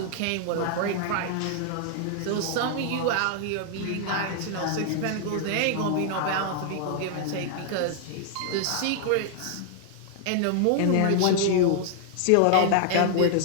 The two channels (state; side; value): different; both; correlation 0.00